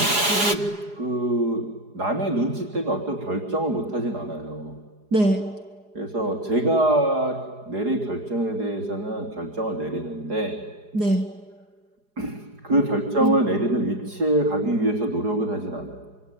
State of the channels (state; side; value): late; left; 4.8 ms